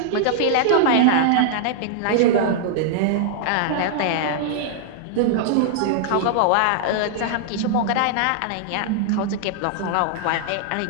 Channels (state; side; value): different; both; correlation -0.01